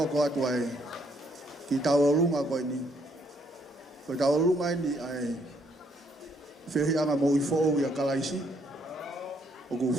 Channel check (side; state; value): both; normal; correlation 0.70